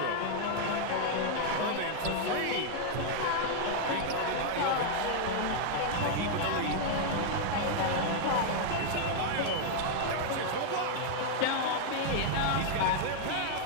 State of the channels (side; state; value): both; different; correlation 0.00